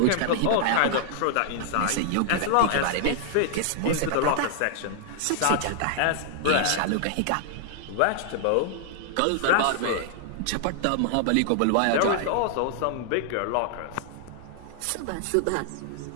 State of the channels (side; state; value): both; different; correlation 0.00